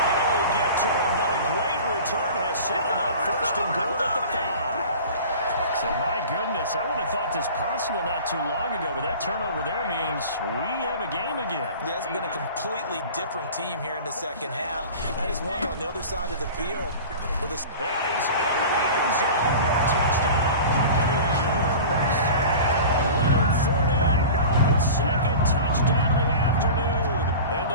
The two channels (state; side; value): inverted; both; correlation -0.37